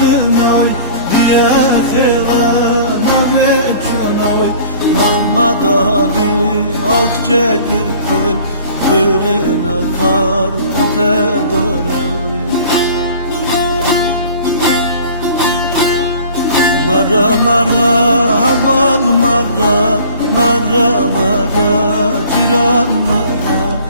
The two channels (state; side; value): inverted; both; correlation -0.47